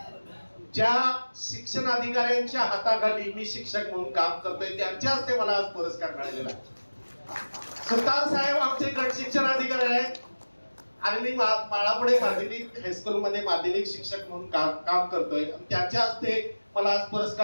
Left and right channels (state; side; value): inverted; both; correlation -1.00